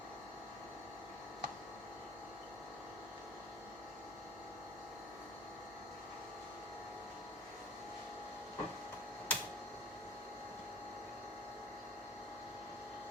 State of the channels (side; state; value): both; normal; correlation 0.42